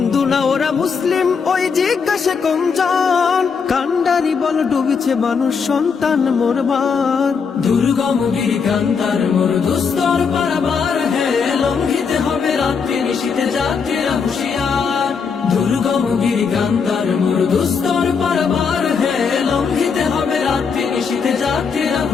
না ওরা মুসলিম ওই জিজ্ঞাসা কোনজন, কান্ডারি বল ডুবিছে মানুষ সন্তান মোরবার। দুর্গম গিরি কান্তার মরু দুস্তর পারাবার হে, লঙ্ঘিতে হবে রাত্রি নিশীথে যাত্রীরা হুঁশিয়ার। দুর্গম গিরি কান্তার মরু দুস্তর পারাবার হে, লঙ্ঘিতে হবে রাত্রি নিশীথে যাত্রীরা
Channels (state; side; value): quieter; right; 5.8 dB